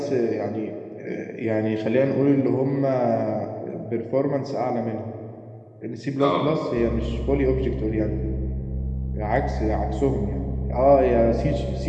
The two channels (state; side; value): identical; both; correlation 1.00